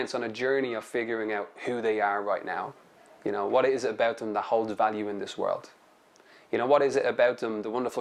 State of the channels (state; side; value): identical; both; correlation 1.00